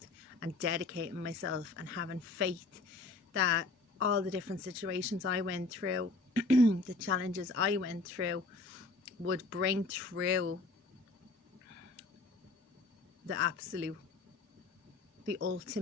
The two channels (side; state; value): right; quieter; 3.6 dB